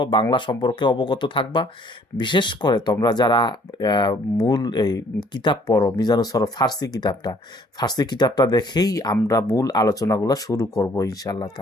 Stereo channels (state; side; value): normal; both; correlation 0.60